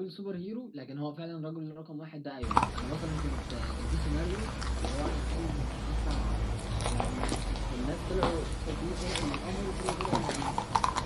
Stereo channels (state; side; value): identical; both; correlation 1.00